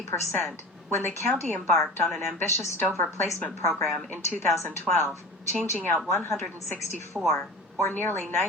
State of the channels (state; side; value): normal; both; correlation 0.35